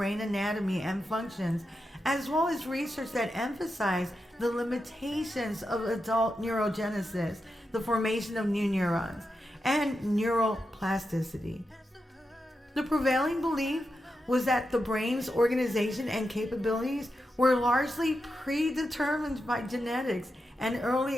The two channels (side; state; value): both; normal; correlation 0.88